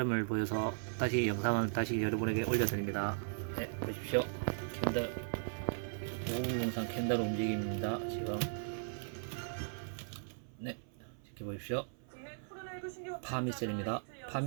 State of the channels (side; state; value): left; silent; 53 dB below the other